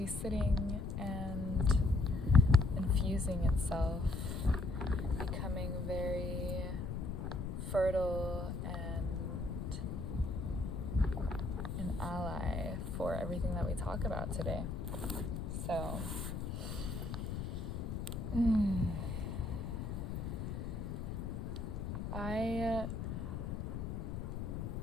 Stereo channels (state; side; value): noise; left; rumble, 4 dB below the sound